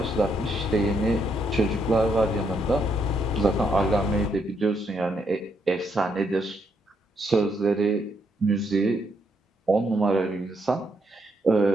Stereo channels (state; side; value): normal; both; correlation 0.76